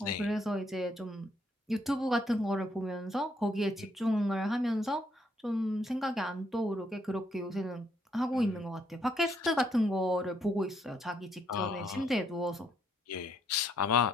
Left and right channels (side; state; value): both; normal; correlation 0.71